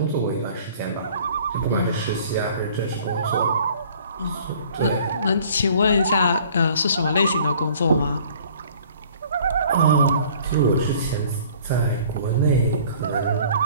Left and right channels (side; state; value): both; inverted; correlation -0.53